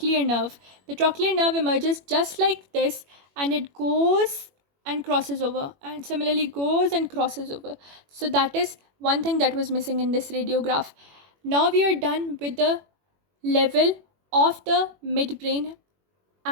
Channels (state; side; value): late; left; 21 ms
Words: nerve. The trochlear nerve emerges just like this, and it goes and crosses over, and similarly goes and crosses over. So that is one thing that was missing in this radiograph. Now we are done with the level of the midbrain